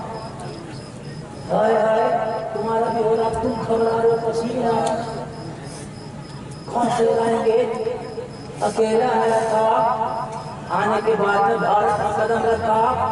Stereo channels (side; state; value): both; identical; correlation 1.00